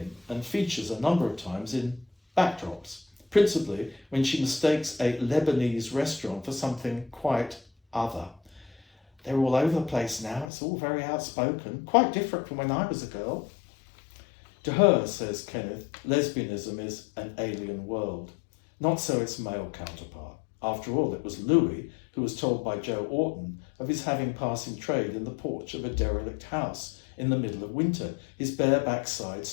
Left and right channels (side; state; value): right; drops out; at 10.5 s